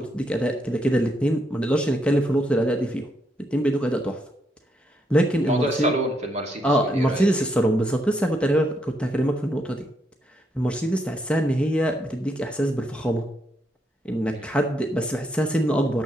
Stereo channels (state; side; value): normal; both; correlation 0.77